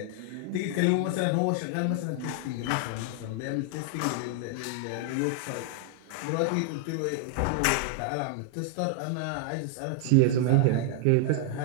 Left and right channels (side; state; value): both; different; correlation 0.00